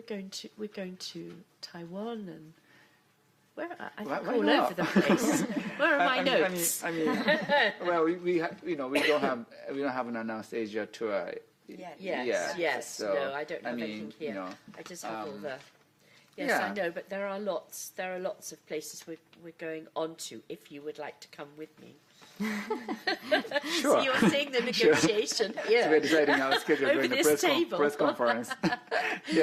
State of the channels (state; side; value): identical; both; correlation 1.00